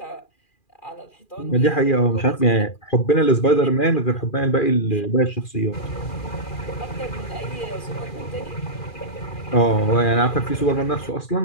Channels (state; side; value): late; right; 2.4 ms